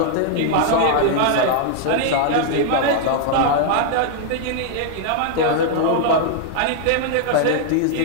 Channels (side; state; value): both; different; correlation -0.01